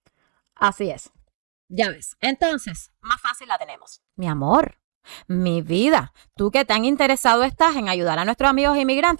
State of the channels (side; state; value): left; silent; digital silence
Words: Así es. Ya ves. Entonces, más fácil la tenemos. Mi amor, mi vida, tú que tan interesado estás en ayudar a nuestros amigos